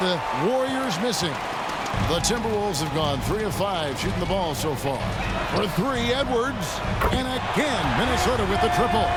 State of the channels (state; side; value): identical; both; correlation 1.00